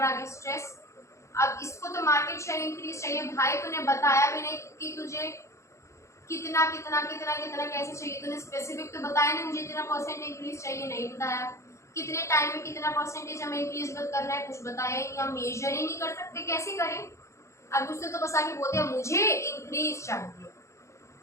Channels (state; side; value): late; right; 0.14 ms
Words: आगे स्ट्रेस। अब इसको तो मार्केट शेयर इंक्रीज चाहिए, भाई तूने बताया भी नहीं कि तुझे कितना कितना कितना कितना कैसे चाहिए, तूने स्पेसिफिक तो बताया नहीं, मुझे इतना परसेंट इंक्रीज चाहिए, नहीं बताया। कितने टाइम में कितना परसेंटेज हमें इंक्रीज करना है, कुछ बताया ही नहीं, हम मेजर ही नहीं कर सकते, कैसे करें। अब उसने तो बस आके बोल दिया मुझे इंक्रीज चाहिए।